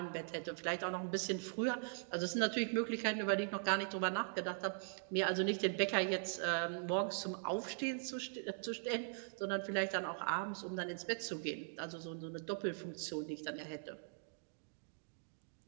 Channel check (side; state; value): left; silent; digital silence